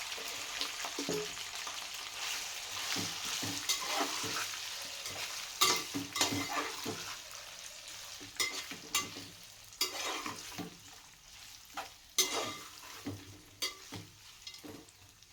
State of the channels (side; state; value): both; identical; correlation 1.00